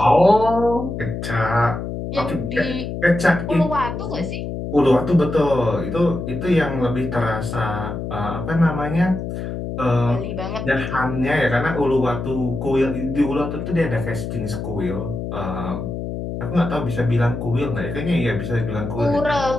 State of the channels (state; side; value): noise; left; hum, 5 dB below the sound